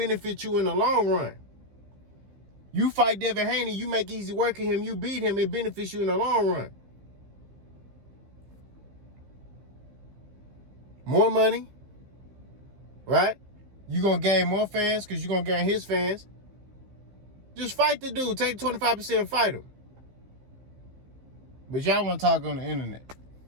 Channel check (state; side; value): late; left; 15 ms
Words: you in the long run. You fight Devin Haney, you make easy work of him, you beat him, it benefits you in the long run. More money, right? You're going to gain more fans because you're going to gain his fans. Just fight the dude. Take 25% and fight him. But y'all want to talk on the internet.